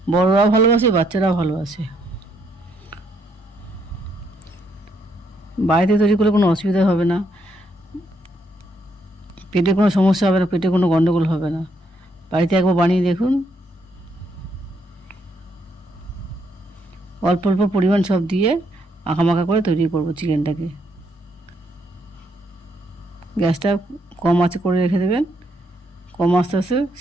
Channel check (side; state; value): both; normal; correlation 0.74